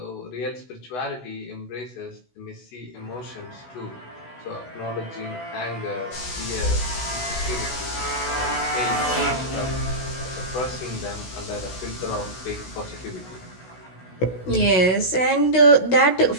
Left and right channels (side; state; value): right; late; 16 ms